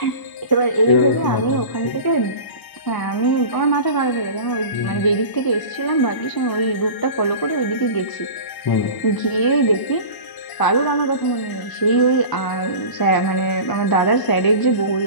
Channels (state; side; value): late; right; 1.0 ms